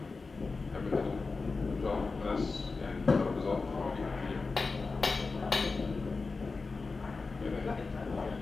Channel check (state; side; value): quieter; right; 4.1 dB